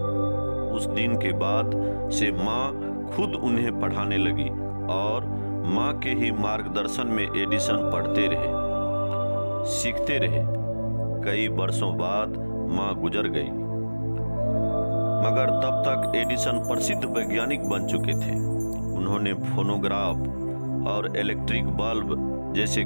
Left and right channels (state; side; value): inverted; both; correlation -1.00